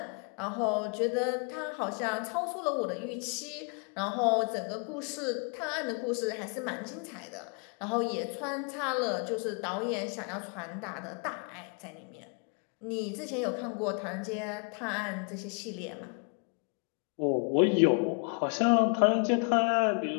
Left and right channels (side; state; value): right; quieter; 38.3 dB